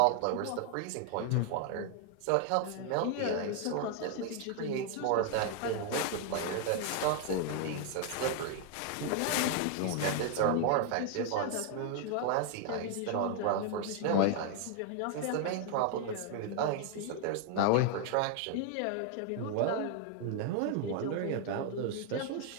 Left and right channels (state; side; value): different; both; correlation 0.00